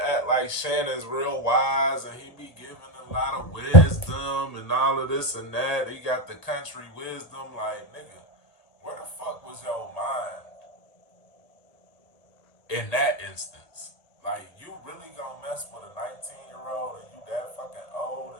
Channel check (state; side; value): late; right; 1.4 ms